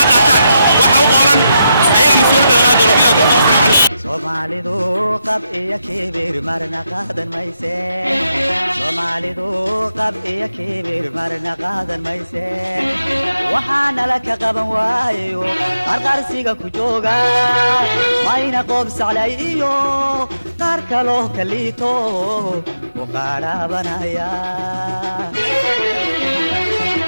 qaataan waxa u qoolan ayaga mas-uuliyadda laga doono bilaa tawfiiq assalaamu calaykum Soomaalidu qab iyo kibir marna qaadan mayse Soomaalidu qab iyo kibir marna qaadan mayse waxaana la ka qaban waayo qarqarsiga ku jooga mayna qob saclayo qaar kaloo kaliito u qaarabanaya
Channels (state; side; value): inverted; both; correlation -0.85